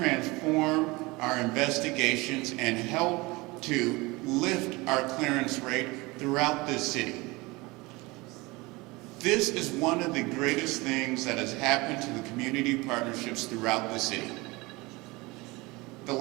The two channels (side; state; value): left; quieter; 23.4 dB